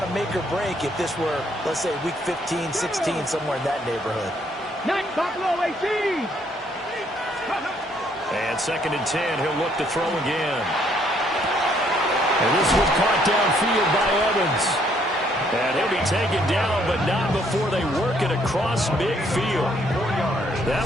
a make or break if this were, let's say, week 15, 16, somewhere in that neighborhood. Night Buffalo 18. And 2nd and 10, he'll look to throw again. And this was caught downfield by Evans. And he'll be taken down, but not before they work it across midfield.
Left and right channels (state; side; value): normal; both; correlation 0.68